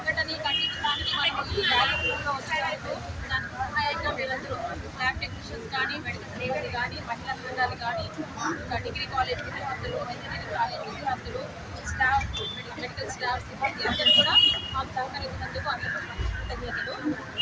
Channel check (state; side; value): identical; both; correlation 1.00